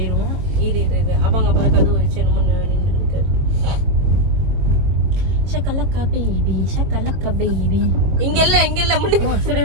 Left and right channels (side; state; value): left; late; 22 ms